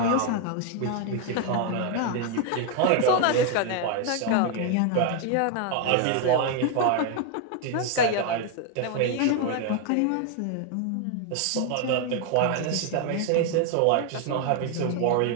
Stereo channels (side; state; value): both; different; correlation 0.01